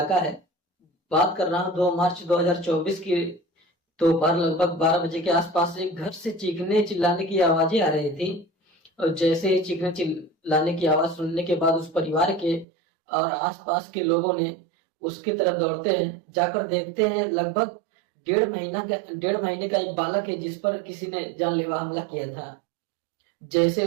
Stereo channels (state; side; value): drops out; left; at 12.7 s